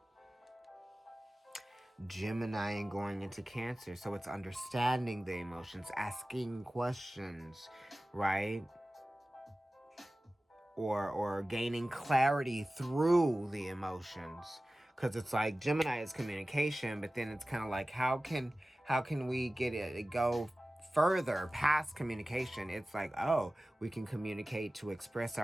Gemini and going into Cancer. So it's understanding the emotions, asking questions, right? Or gaining clarity through the emotions. Because it's like Gemini is communication, but then it's kind of like how can we get it go further past communication? It's like, oh, we can communicate to express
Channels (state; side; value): normal; both; correlation 0.96